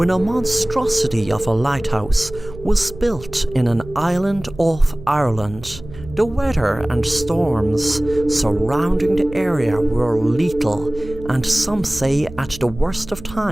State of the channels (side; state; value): right; noise; hum, 16 dB below the sound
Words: a monstrosity of a lighthouse was built in an island off Ireland. The weather and storms surrounding the area were lethal, and some say at the worst of